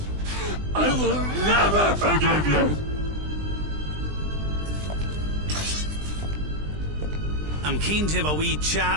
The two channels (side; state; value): left; late; 20 ms